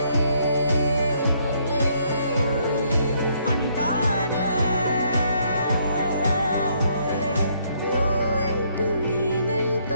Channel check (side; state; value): both; inverted; correlation -0.70